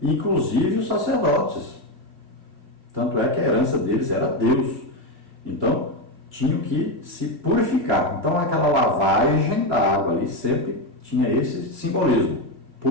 inclusive os sacerdotes. Tanto é que a herança deles era Deus. Então, tinham que se purificar. Então, aquela lavagem da água ali sempre tinha esse simbolismo,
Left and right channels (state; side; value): late; left; 2.5 ms